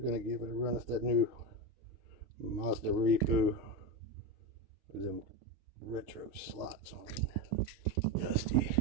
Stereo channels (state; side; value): late; left; 6.6 ms